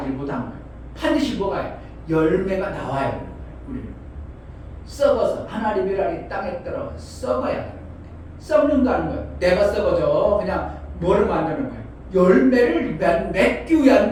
못한 거예요. 반드시 뭐가 해요? 열매가 나와야 되는 거예요. 우리는 썩어서 하나님 미랄이 땅에 떨어 썩어야 되는 거예요. 썩는다는 거예요. 내가 썩어져. 그냥 뭐를 만드는 거예요? 열매를 맺기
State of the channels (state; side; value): identical; both; correlation 1.00